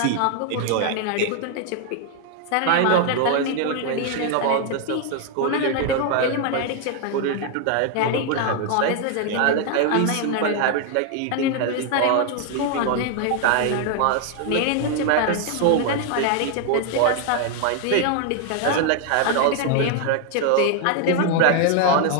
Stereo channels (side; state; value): both; different; correlation 0.00